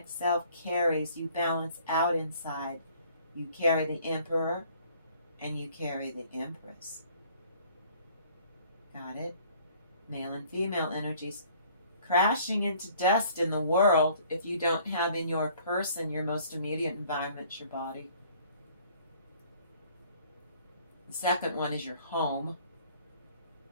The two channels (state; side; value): inverted; both; correlation -0.57